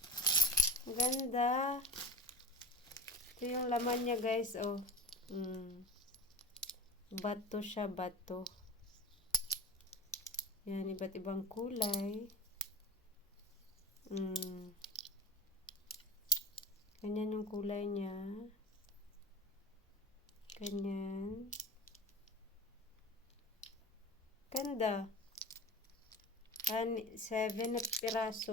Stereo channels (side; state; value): both; normal; correlation 0.32